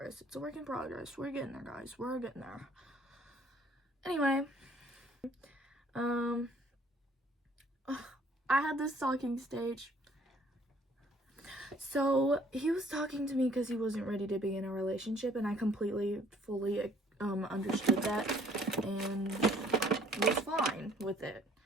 We're getting there, guys. We're getting there. Anyway, I had this talking stage. So he was talking to me because he wasn't ready to be in a relationship, and I completely, fully understood that and was fine with it.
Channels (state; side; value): normal; both; correlation 0.59